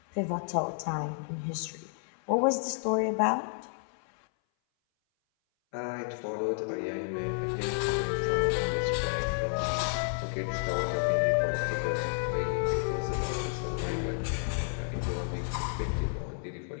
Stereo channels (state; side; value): silent; right; 57 dB below the other